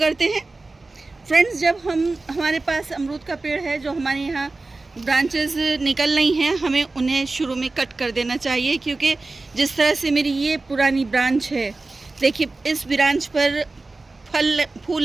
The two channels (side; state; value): left; quieter; 3.4 dB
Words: हैं। फ्रेंड्स, जब हमारे पास अमरूद का पेड़ है, जो हमारे यहाँ ब्रांचेस निकल रही हैं, हमें उन्हें शुरू में कट कर देना चाहिए, क्योंकि जिस तरह से मेरी ये पुरानी ब्रांच है, देखिए इस ब्रांच पर